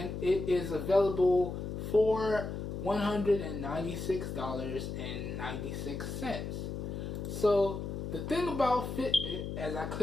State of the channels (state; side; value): noise; left; hum, 5 dB below the sound